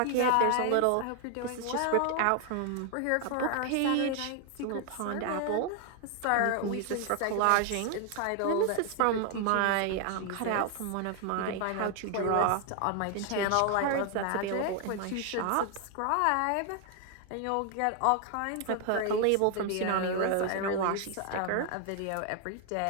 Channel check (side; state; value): both; different; correlation 0.00